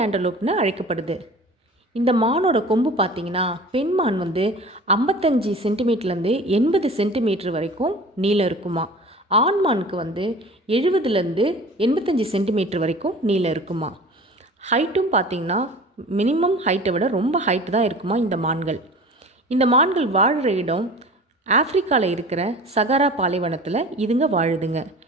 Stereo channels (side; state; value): both; normal; correlation 0.40